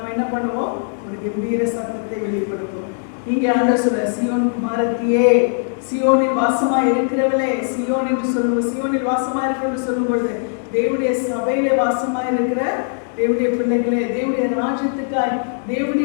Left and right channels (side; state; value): right; silent; digital silence